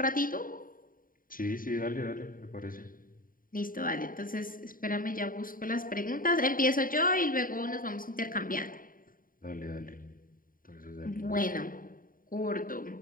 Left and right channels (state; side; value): late; right; 0.41 ms